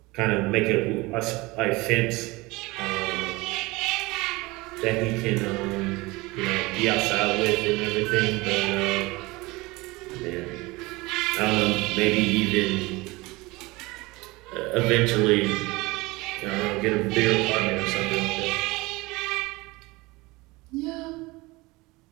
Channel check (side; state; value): left; quieter; 22.6 dB